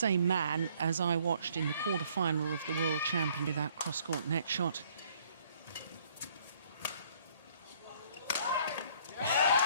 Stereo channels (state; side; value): inverted; both; correlation -0.61